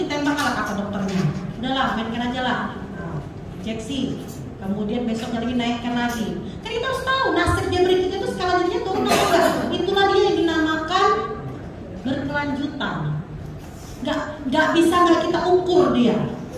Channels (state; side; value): identical; both; correlation 1.00